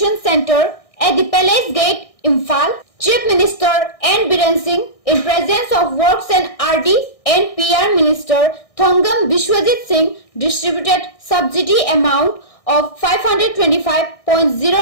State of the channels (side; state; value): right; late; 1.6 ms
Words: Centre at the Palace Gate, Imphal. Chief Minister N. Biren Singh, in presence of Works and RD and PR Minister Thongam Bishwajit Singh, distributed subsidy amount of